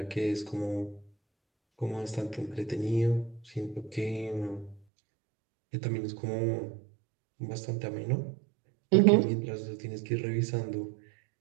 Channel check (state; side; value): drops out; left; at 4.8 s